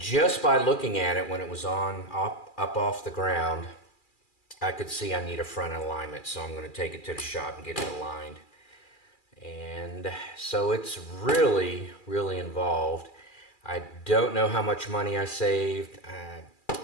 by looking at it when it was on up off the ground, I could see I need a front alignment. So I'm going to take it to the shop and get it aligned. And so it's really, really involved. I don't know how much money I saved.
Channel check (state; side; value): late; right; 2.4 ms